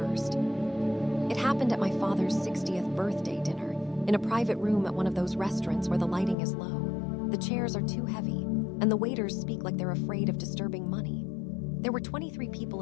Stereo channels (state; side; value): drops out; right; at 6.4 s